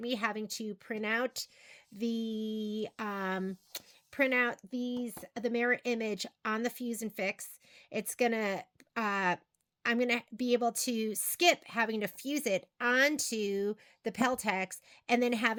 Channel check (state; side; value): identical; both; correlation 1.00